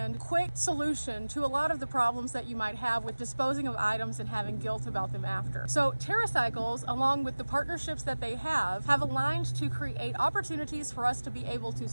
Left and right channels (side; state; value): both; inverted; correlation -1.00